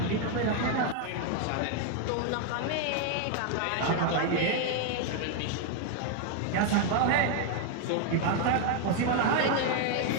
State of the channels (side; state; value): both; different; correlation 0.00